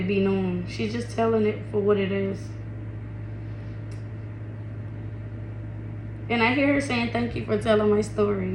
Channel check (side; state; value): both; identical; correlation 1.00